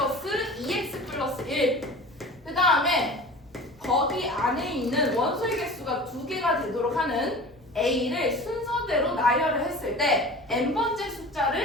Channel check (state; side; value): normal; both; correlation 0.38